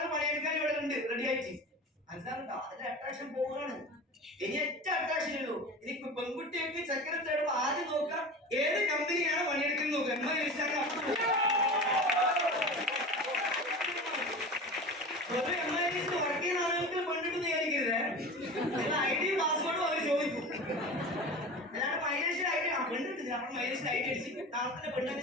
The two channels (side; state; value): both; normal; correlation 0.32